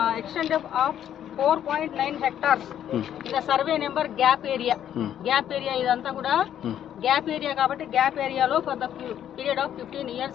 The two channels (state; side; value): quieter; right; 10.3 dB